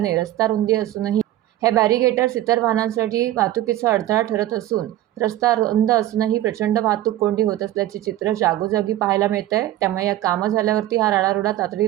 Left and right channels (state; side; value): quieter; left; 14.0 dB